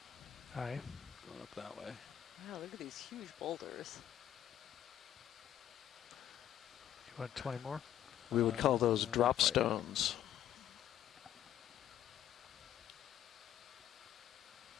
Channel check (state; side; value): quieter; right; 11.2 dB